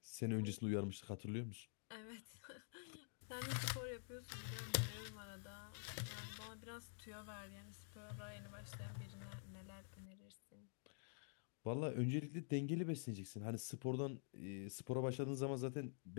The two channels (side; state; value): right; silent; digital silence